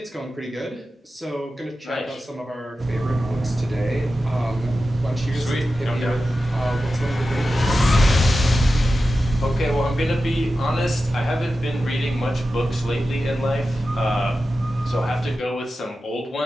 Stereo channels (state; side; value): normal; both; correlation 0.92